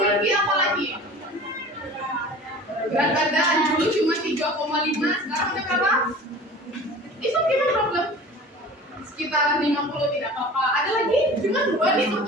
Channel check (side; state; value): both; normal; correlation 0.41